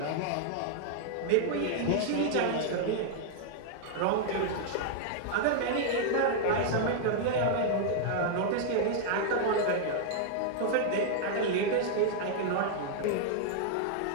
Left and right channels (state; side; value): different; both; correlation 0.00